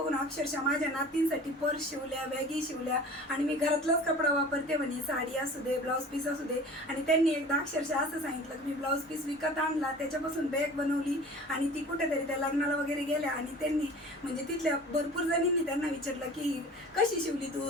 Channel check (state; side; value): normal; both; correlation 0.42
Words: अक्षरशः माझ्या नातींसाठी पर्स शिवल्या, बॅगी शिवल्या आणि मी घरातलाच कपडा वापरते म्हणे, साडी असू दे, ब्लाऊज पीस असू दे. आणि त्यांनी एकदा अक्षरशः असं सांगितलं की मी ब्लाऊज पीस विकत आणला, त्याच्यापासून बॅग बनवली आणि ती कुठेतरी त्या लग्नाला वगैरे गेल्या. आणि त्यांनी म्हणजे तिथल्या भरपूर जणींनी त्यांना विचारलं की कशी शिवली तू,